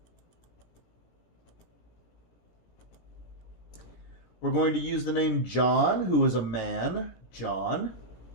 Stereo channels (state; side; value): late; right; 17 ms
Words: We're going to use the name John, who is a man. John.